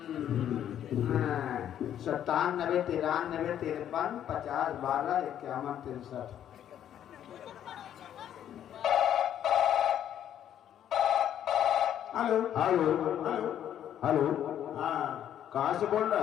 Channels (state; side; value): quieter; right; 10.3 dB